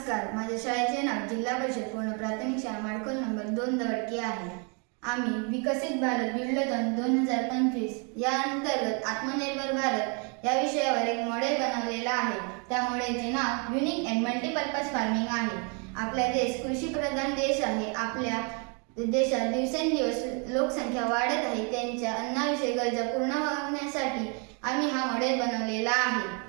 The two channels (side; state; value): left; quieter; 35.9 dB